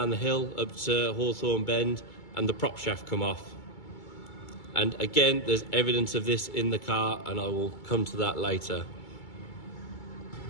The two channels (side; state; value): right; late; 2.3 ms